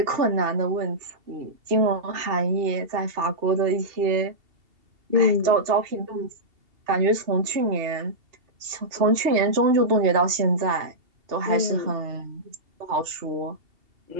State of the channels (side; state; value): left; late; 2.7 ms